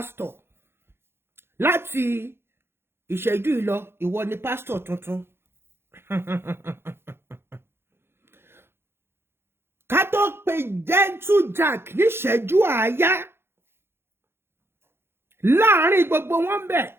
Láti ìṣẹ́jú ìlọ, ìwọ ni pastor tuntun. Ká tó pe Gentle Jack ní ìṣẹ́jú àáyá. Láàárín gbogbo wọn bẹ̀.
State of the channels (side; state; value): left; late; 0.11 ms